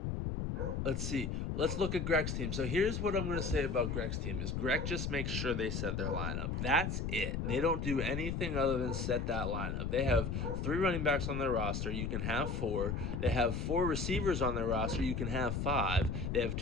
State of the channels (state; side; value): noise; left; rumble, 2 dB below the sound